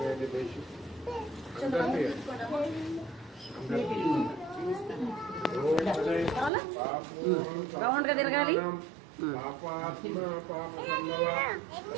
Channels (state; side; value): drops out; left; at 6.5 s